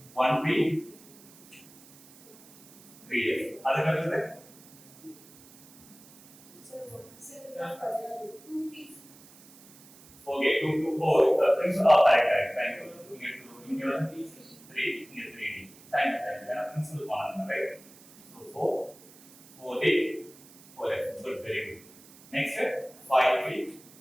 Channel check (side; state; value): right; noise; hiss, 23 dB below the sound